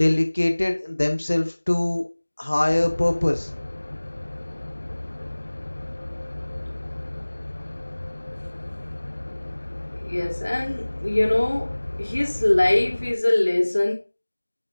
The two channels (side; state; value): both; inverted; correlation -1.00